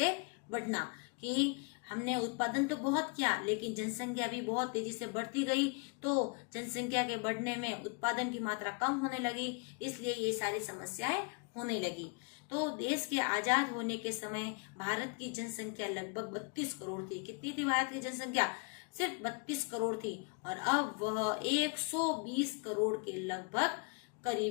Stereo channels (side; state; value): right; quieter; 34.4 dB